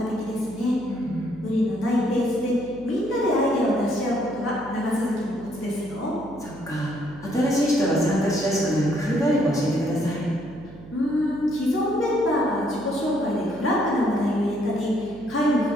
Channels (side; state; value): right; noise; hum, 18 dB below the sound